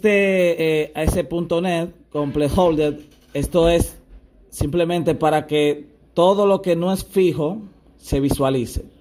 Complete Holder, esto es simplemente para que todo lo que no es fijo se visualice.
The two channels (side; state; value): both; identical; correlation 1.00